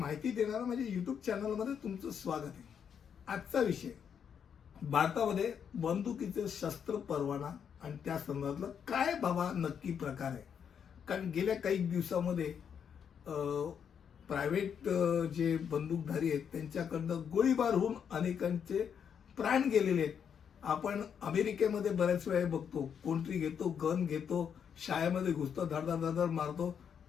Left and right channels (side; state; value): right; quieter; 7.7 dB